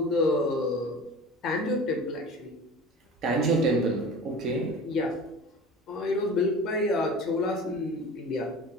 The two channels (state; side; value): normal; both; correlation 0.37